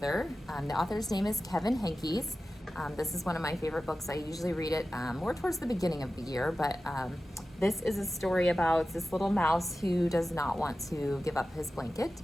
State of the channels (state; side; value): normal; both; correlation 0.94